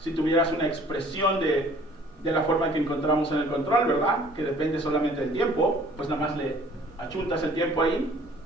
tuvieras una expresión de la forma que encontramos en el control, ¿verdad? Que depende solamente del tiempo, pues nada más le achuntas el tiempo ahí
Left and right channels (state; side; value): normal; both; correlation 0.54